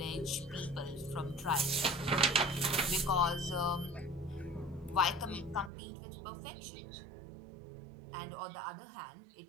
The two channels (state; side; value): drops out; left; at 5.7 s